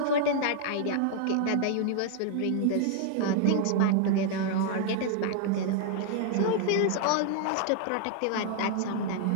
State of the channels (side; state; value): both; different; correlation 0.00